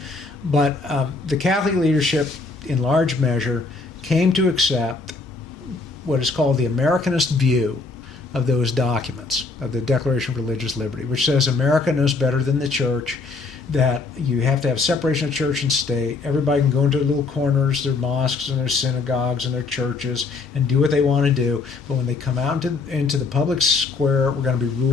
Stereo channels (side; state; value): right; quieter; 4.0 dB